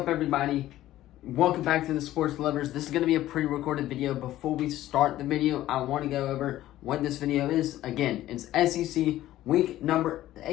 everybody? Welcome back to the Sports Lovers. This is going to be a pre-recorded video. Before we start the video, I want to go over what this video is. Again, it's SEC week number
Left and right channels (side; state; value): right; quieter; 14.3 dB